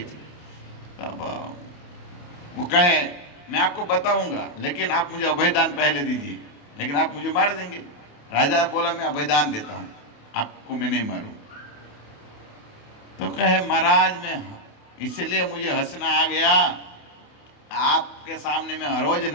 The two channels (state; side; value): late; right; 28 ms